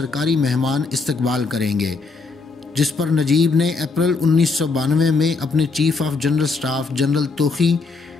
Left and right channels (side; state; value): right; quieter; 4.1 dB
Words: مہمان استقبال کریں گے، جس پر نجیب نے اپریل 1992 میں اپنے chief of general staff general توخی،